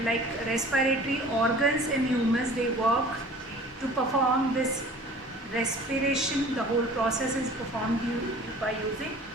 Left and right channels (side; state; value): both; normal; correlation 0.46